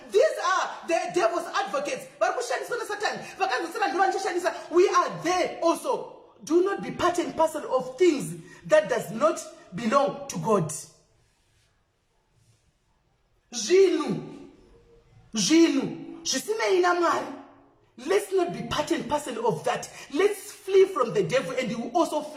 these are the devil's advocates vari kushandiswa nesatani vakanzosara ndo vanichishandisa we are there also do not be part and parcel of things that does not belong to God zvinhu zvisinei namwari let's not be part and parcel of that let's flee from the devil and he will also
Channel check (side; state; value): both; identical; correlation 1.00